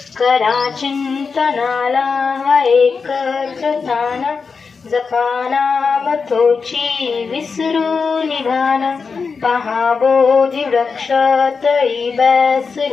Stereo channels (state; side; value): quieter; right; 5.1 dB